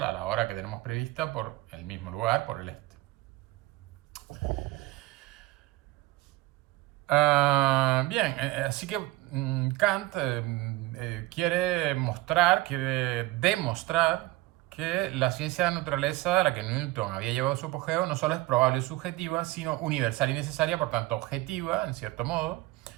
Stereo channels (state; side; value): quieter; left; 18.9 dB